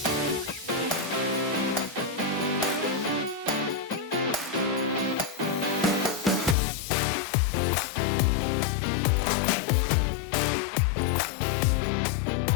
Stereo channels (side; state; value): right; drops out; at 6.6 s